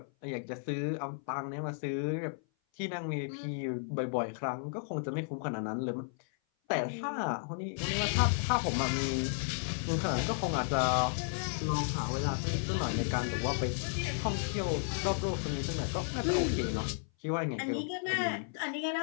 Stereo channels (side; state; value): right; silent; 55 dB below the other